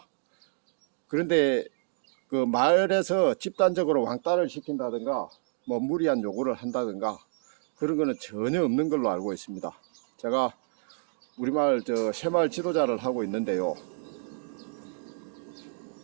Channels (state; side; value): silent; left; digital silence